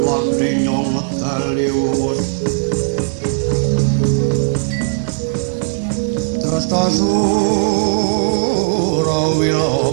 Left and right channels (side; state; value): left; silent; digital silence